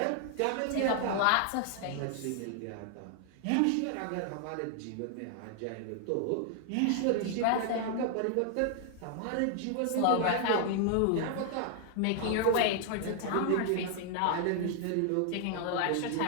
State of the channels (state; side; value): different; both; correlation 0.00